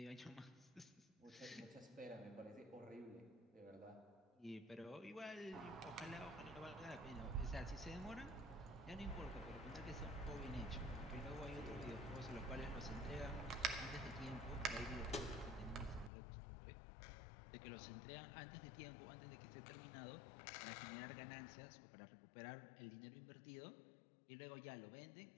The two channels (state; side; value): drops out; right; at 16.1 s